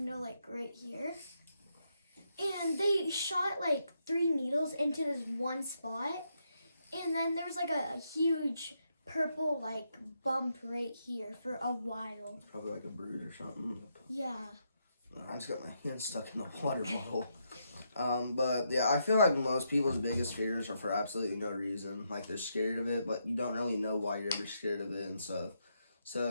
like right here, and they shot like 3 needles into this one spot, and then there was like a huge purple like bump right here for a while. Probably like a bruise or something. Yeah. I just got my hand stuck in the water bottle. But yeah, I feel like most people's biggest fears are for absolutely no reason. Like, they're scared of it, but you don't really know why you're ever scared of it and stuff. So,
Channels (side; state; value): both; inverted; correlation -0.79